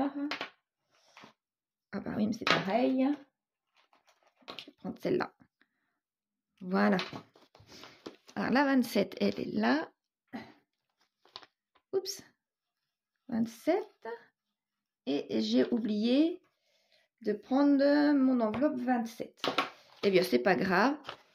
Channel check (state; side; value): identical; both; correlation 1.00